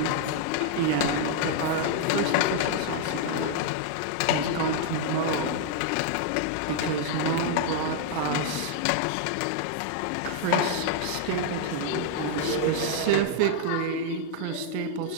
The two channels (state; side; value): different; both; correlation 0.00